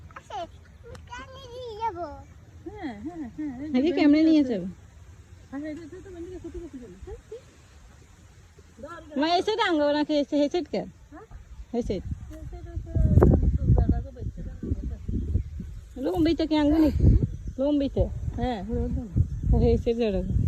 আছে। পানি দিয়ে যাব। হ্যাঁ হ্যাঁ হ্যাঁ আগে ক্যামেরা নিয়ে যাবে। মা এসে ডাঙ্গো নাকি এসে হেসেট কে? হেসেট লম্বিতে কি আঙ্গুনি? লম্বিতে হ্যাঁ হেসেট জড়ো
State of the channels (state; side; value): identical; both; correlation 1.00